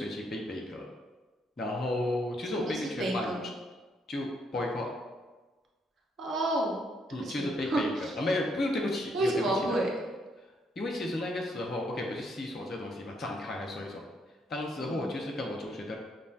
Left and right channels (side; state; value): both; normal; correlation 0.73